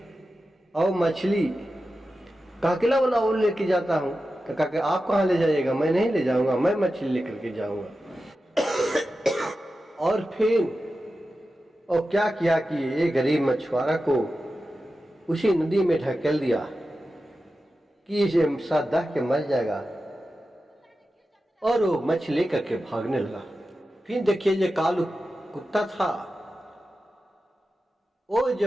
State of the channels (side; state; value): both; normal; correlation 0.92